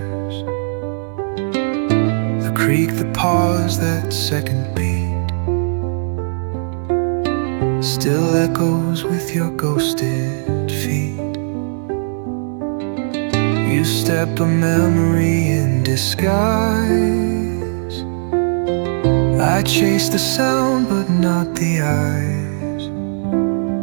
The creak, the pause, that second beat still echoes with your ghosted feet. You step a memory in disguise. I chase the sound but not the eyes.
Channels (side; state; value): left; silent; 67 dB below the other